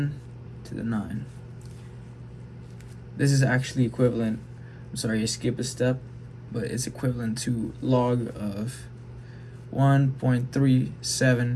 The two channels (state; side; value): identical; both; correlation 1.00